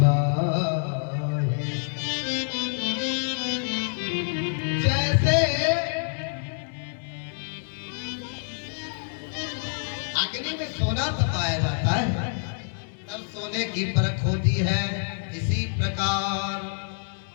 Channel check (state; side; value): silent; right; 60 dB below the other